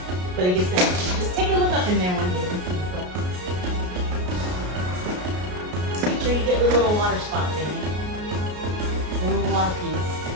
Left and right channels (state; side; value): late; left; 33 ms